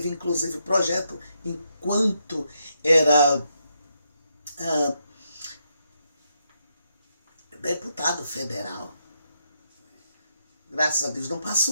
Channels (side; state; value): both; inverted; correlation -0.80